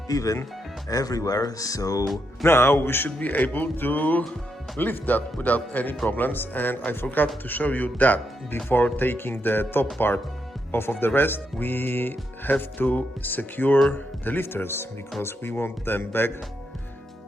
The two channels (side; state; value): both; normal; correlation 0.81